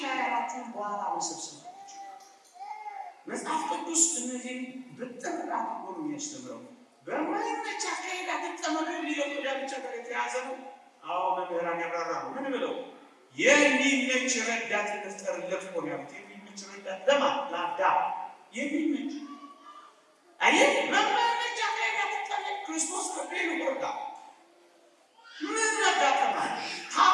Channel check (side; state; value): both; identical; correlation 1.00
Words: ያላችሁን በኋላ መሰብሰብ መጽሐፍ ቅዱስ እነዚህም ብጥር አድርጎ ነው የሚያስተምረው። በማይመች አካሄድ አትጠመዱ የሚለው ብቻ ጋር የተያዘ ነው። አዎ መምህራን ያብራራሉ። ምን ብለው የሚመች ረዳት እንፍጠርለት እኮ ነው ያሉት። የሚመች ረዳት ለማን? ለአዳም የሚመች አየህ። በማይመች አካሄድ አትጠመዱ። ክርስቶስ ከቤሉ ወርዳ ምን መጋጠም አለ?